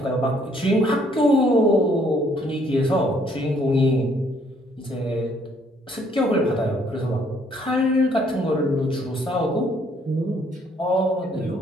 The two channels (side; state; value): both; normal; correlation 0.65